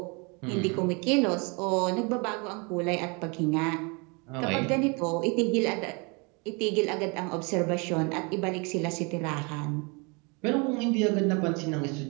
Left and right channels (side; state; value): left; quieter; 31.0 dB